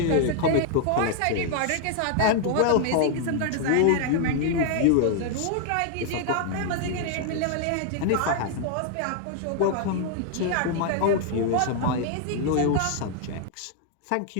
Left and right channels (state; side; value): different; both; correlation 0.00